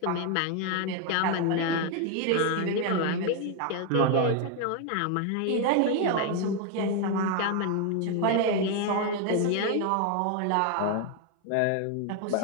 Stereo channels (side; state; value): both; different; correlation 0.01